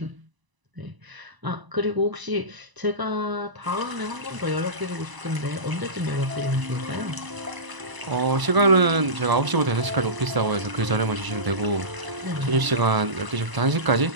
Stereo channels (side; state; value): left; late; 1.0 ms